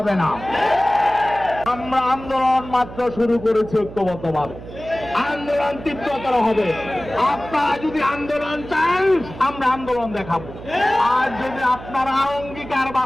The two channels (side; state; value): right; noise; hum, 14 dB below the sound